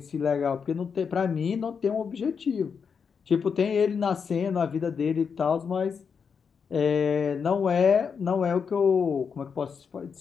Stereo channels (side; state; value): right; quieter; 6.2 dB